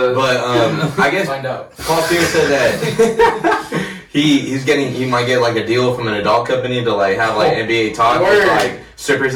I guess Find out. Paul Pierce said that he might get like a deal from an adult company to like have like NBA talk with Word. like strippers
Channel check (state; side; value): identical; both; correlation 1.00